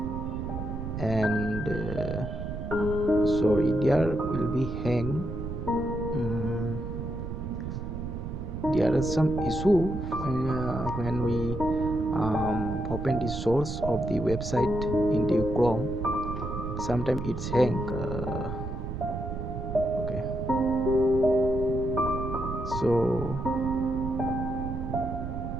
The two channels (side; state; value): right; noise; rumble, 6 dB below the sound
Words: and sorry, there will be hang. There is some issue when we open the source of the website in the Chrome. Sometimes it's hang. Okay, so